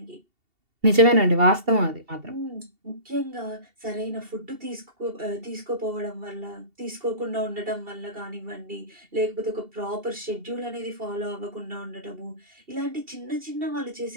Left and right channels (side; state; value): left; late; 2.7 ms